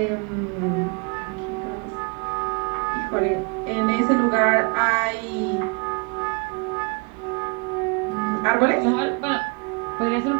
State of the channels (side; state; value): left; quieter; 33.6 dB